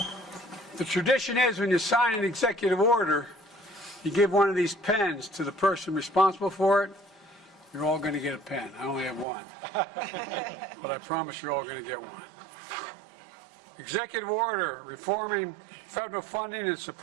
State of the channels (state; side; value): drops out; left; at 9.2 s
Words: The tradition is when you sign an executive order, you give one of these pens to the person responsible for it. You're all going to get a pen. I only have one. But I promise you're all going to get one. Executive order reforming federal funding and